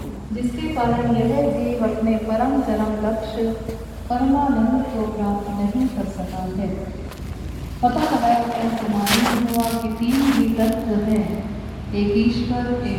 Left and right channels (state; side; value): identical; both; correlation 1.00